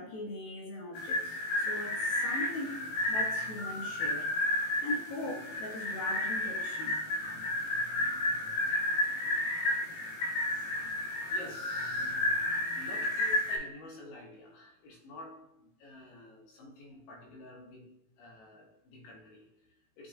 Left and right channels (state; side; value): late; right; 18 ms